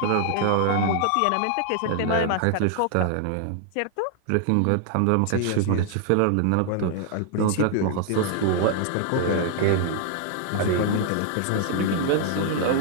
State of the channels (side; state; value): both; different; correlation 0.00